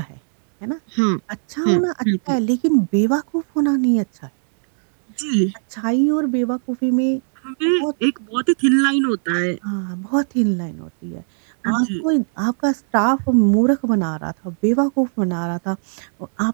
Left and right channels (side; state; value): left; silent; digital silence